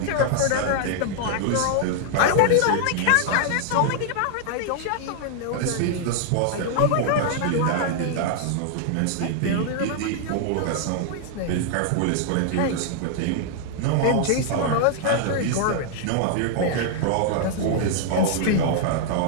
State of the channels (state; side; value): different; both; correlation -0.01